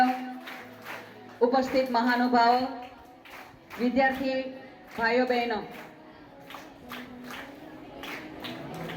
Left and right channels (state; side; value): identical; both; correlation 1.00